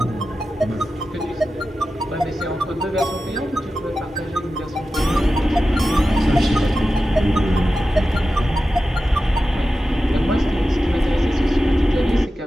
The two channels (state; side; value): normal; both; correlation 0.93